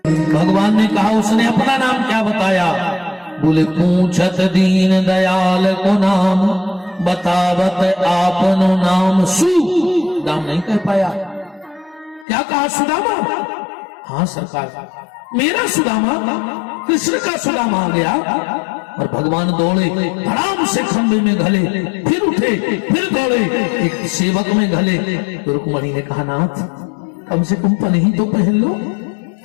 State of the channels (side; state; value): right; drops out; at 12.2 s